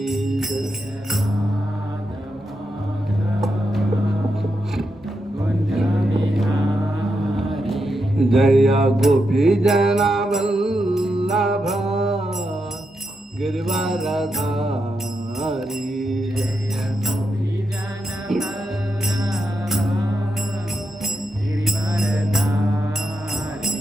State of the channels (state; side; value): normal; both; correlation 0.85